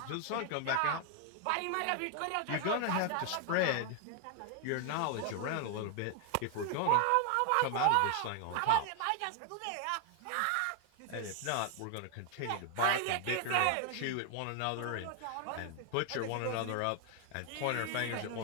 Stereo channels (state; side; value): different; both; correlation 0.00